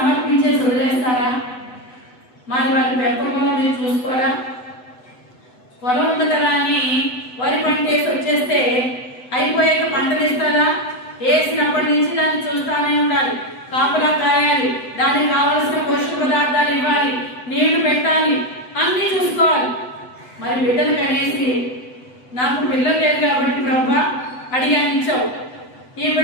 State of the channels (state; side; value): late; right; 8.0 ms